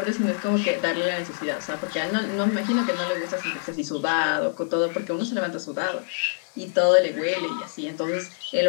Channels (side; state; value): right; silent; digital silence